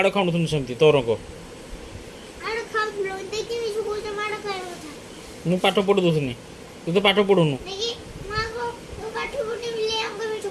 ଖାଉନଥିଲି ସେମିତି ତୋର କ ମୁଁ ପାଠ ପଢ଼ି ଦେଉଥିଲି ତୁ ତ ପାଠ ପଢ଼ୁନୁ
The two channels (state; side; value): identical; both; correlation 1.00